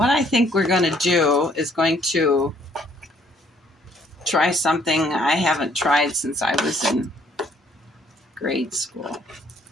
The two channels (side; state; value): both; normal; correlation 0.64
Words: I think we're going to do is going to try something I haven't tried since I was in grade school.